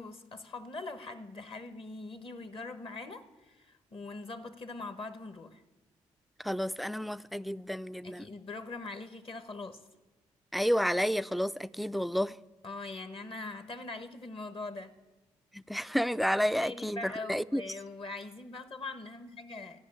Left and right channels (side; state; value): both; normal; correlation 0.93